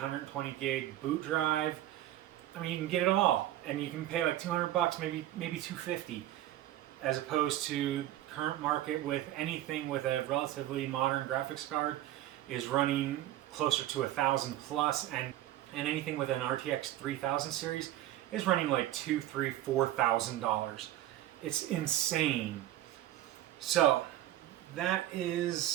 gig boot drive. I mean, you can get it all, and you can pay like 200 bucks, maybe 250, as opposed to current market with anything with a relatively modern graphics card is running closer to 1,000 plus, and anything with an RTX 3000 series is running like $2,000, $3,000, $4,000. It's insane. So that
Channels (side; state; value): left; quieter; 13.7 dB